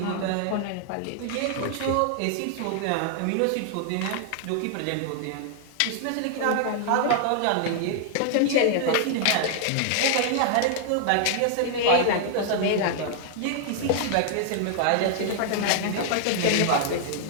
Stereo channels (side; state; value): both; different; correlation -0.01